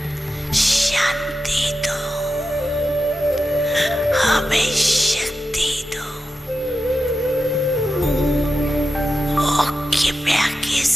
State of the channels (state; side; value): normal; both; correlation 0.90